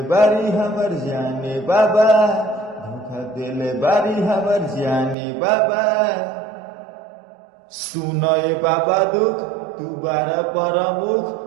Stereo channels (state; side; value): drops out; left; at 5.2 s